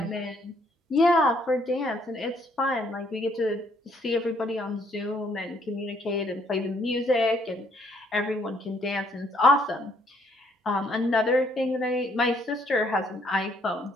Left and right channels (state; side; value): normal; both; correlation 0.67